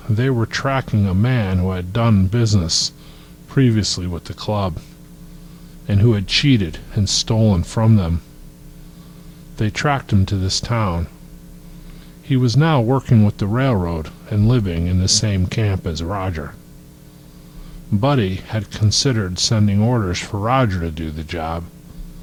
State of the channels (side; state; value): both; identical; correlation 1.00